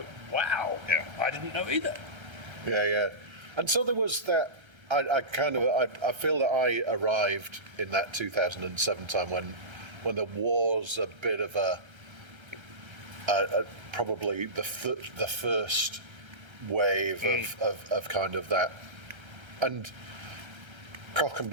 "Wow, I didn't know either." Yeah. And so there was that. I feel that I arrived in that 2007 time when there was a bit of a probably the first wave of kind of that, and Cock and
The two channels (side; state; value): left; late; 1.3 ms